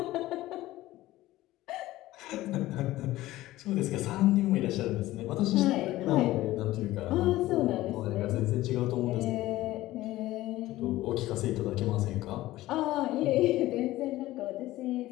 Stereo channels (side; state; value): right; quieter; 16.5 dB